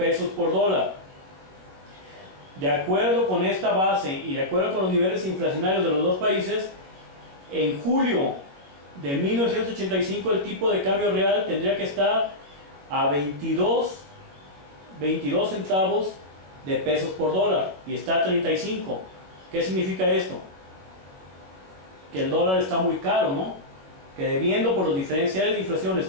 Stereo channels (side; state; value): left; late; 21 ms